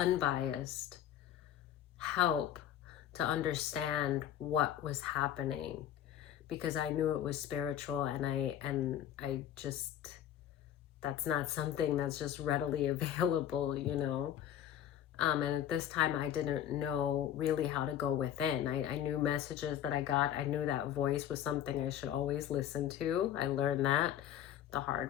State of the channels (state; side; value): quieter; right; 10.8 dB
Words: help to understand what was happening, because I knew it was spiritual, and I just, that's not something that's just readily available, you know. And at this time, I didn't know really how to go within. I knew messages that I got. I knew that voice was something I should always listen to. I learned that the